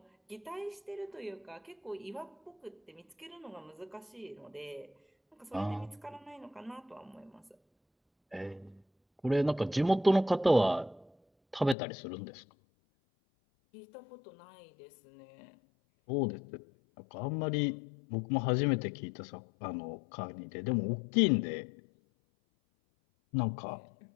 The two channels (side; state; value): right; drops out; at 11.8 s